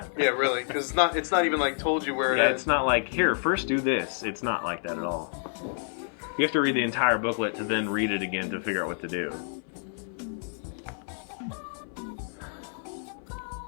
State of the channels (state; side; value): silent; right; 59 dB below the other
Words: Yeah, really, because it's not even like told you where it is. Yeah, it's not like, here, first do this. It's not like that at all. You have to read the entire booklet to then read it again to figure out what to do.